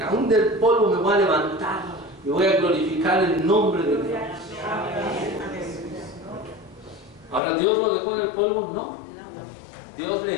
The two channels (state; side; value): drops out; right; at 7.4 s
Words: del polvo me voy a levantar y voy a glorificar el nombre de Dios. Ahora, ¿Dios lo dejó en el polvo? No. Dios